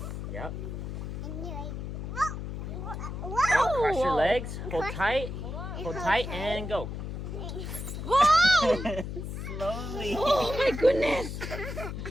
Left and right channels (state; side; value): noise; left; hum, 6 dB below the sound